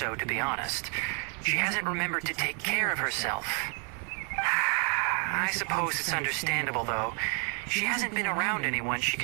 to be honest. She hasn't remembered to take care of herself. I suppose it's understandable, though. She hasn't been around anyone she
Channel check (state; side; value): quieter; left; 38.3 dB